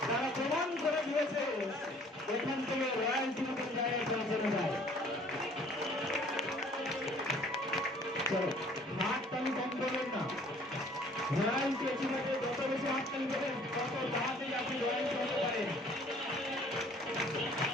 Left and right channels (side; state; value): both; normal; correlation 0.55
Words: তারা প্রমাণ করে দিয়েছে এখান থেকে রয়্যালটি মতন জায়গায় পৌঁছানো যায়। চলো হাততালি কম করবেন না, রয়্যালটি এসিভাবে যত বেশি হাততালি দেবেন তত তাড়াতাড়ি আপনি রয়্যালটি হতে পারেন।